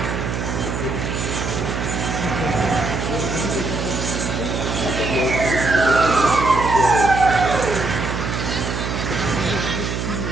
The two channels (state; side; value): noise; right; hum, 3 dB below the sound